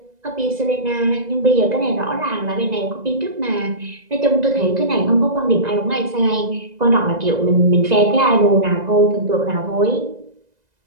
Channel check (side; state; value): left; late; 2.0 ms